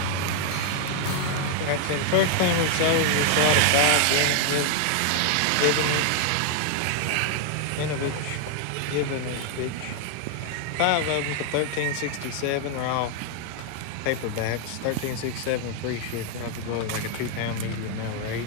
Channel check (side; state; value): both; different; correlation 0.00